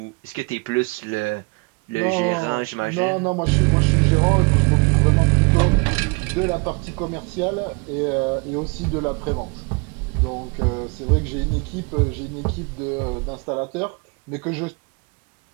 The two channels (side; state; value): left; quieter; 30.2 dB